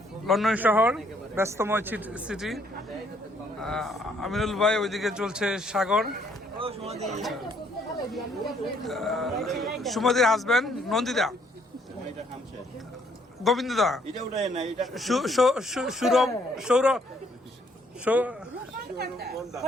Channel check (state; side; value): normal; both; correlation 0.67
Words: লন্ডন শহর ব্যস্তময় সিটি। আমিনুল ভাই ওইদিকে চলছে সাগর, সুমতির হাজবেন্ড নন্দিতা, গোবিন্দদা, সৌরভ,